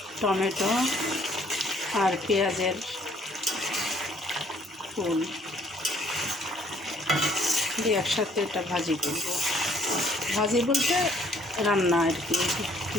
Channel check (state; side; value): normal; both; correlation 0.62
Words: টমেটো আর পেঁয়াজের ফুল দিয়ে একসাথে এটা ভাজি করব। ভাজি বলতে রান্না আর কি,